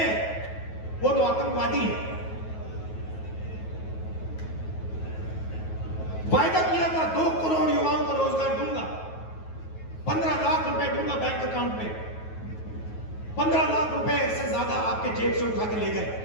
वो तो आतंकवादी है। वायदा किया था 2 करोड़ युवाओं को रोजगार दूंगा, 15 लाख रुपए दूंगा बैंक अकाउंट में। 15 लाख रुपए से ज्यादा आपके जेब से उठा के ले गए।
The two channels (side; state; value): right; late; 9.3 ms